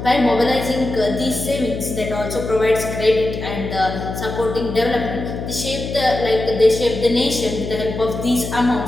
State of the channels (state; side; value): noise; left; hum, 7 dB below the sound